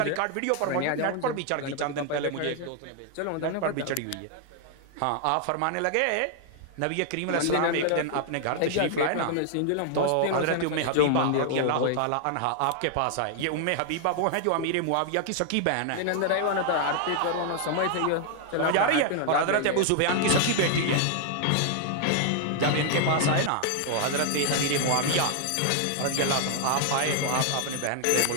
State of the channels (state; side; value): different; both; correlation 0.00